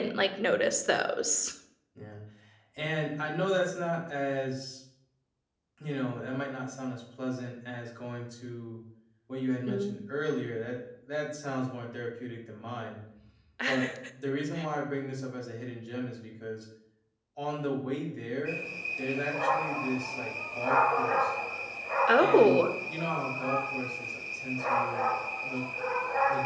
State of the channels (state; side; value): identical; both; correlation 1.00